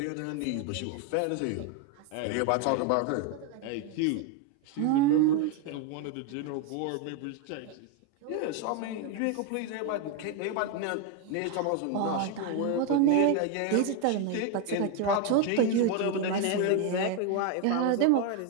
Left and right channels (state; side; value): different; both; correlation 0.01